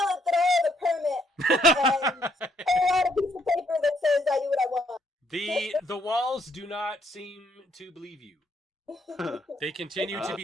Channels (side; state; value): both; normal; correlation 0.70